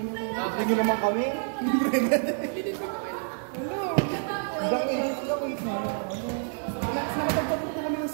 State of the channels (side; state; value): left; silent; 59 dB below the other